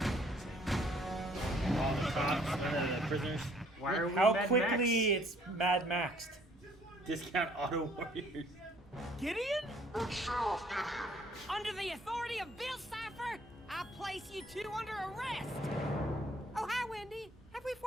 All the cops, prisoners. Why are we How Mad quickly it's Mad Maxed. Discount auto warriors. Gideon? Under the authority of Bill Cipher, I place you two under arrest. Oh, hi, Wendy. Have we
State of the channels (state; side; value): normal; both; correlation 0.60